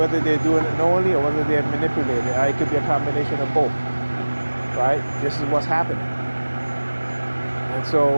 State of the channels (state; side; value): inverted; both; correlation -1.00